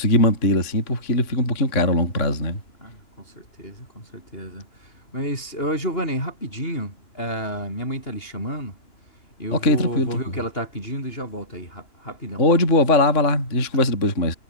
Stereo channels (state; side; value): late; right; 2.9 ms